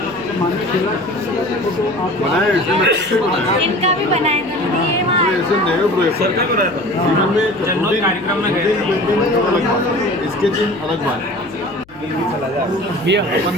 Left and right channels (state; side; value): noise; left; hum, 27 dB below the sound